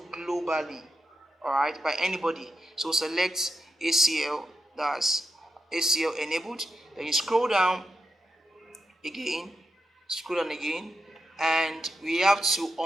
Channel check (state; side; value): normal; both; correlation 0.87